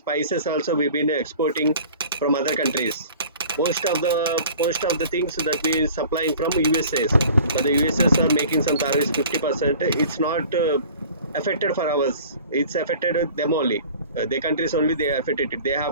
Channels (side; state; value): both; inverted; correlation -0.45